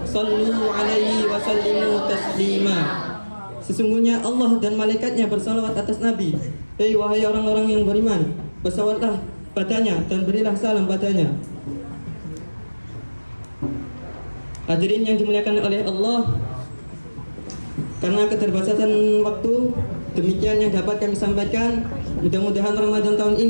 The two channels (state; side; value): inverted; both; correlation -1.00